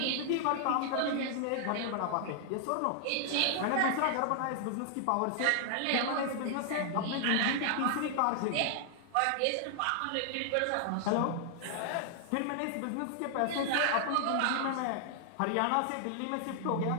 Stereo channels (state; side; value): different; both; correlation 0.00